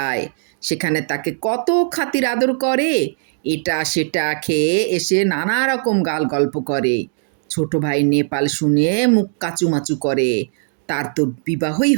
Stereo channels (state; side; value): silent; left; 67 dB below the other